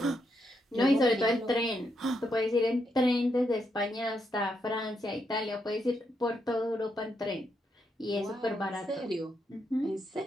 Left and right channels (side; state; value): both; normal; correlation 0.80